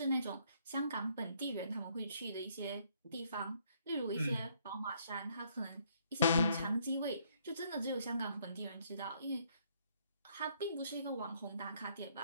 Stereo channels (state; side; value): inverted; both; correlation -0.68